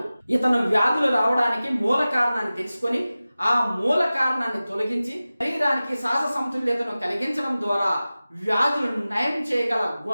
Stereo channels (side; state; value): both; inverted; correlation -0.96